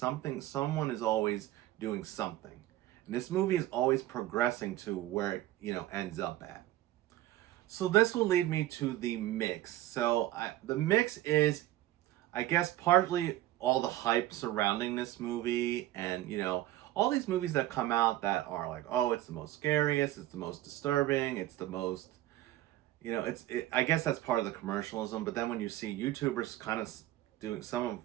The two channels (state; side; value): quieter; left; 14.9 dB